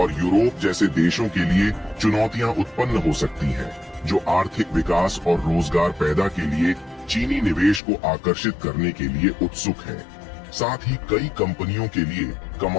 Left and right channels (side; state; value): right; drops out; at 7.8 s